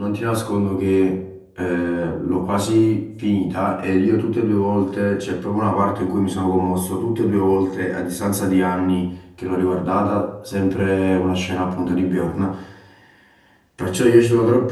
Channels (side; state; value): both; identical; correlation 1.00